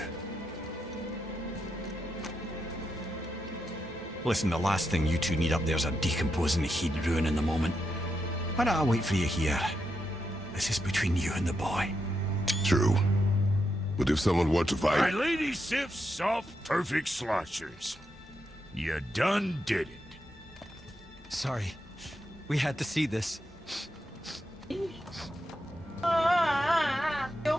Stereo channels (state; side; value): normal; both; correlation 0.84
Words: Listen, the last thing you two need up there's a decomposing he'd ruining the moment. Why don't I wait for you here? This is between you and the boy. True. But if someone were to My fight... lady Sif's soft, perfect sloshers. You done did it. Sorry. We had to see this.